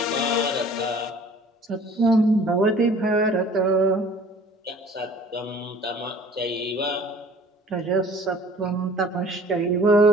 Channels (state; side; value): normal; both; correlation 0.49